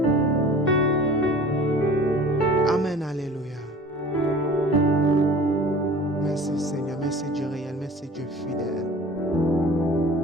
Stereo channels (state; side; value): normal; both; correlation 0.43